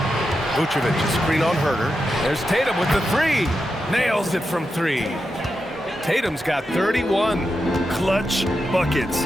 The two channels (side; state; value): both; normal; correlation 0.88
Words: Vucevic, a screen on Herter. There's Tatum with the 3. Nails it from 3. Tatum's got 31. Clutch buckets.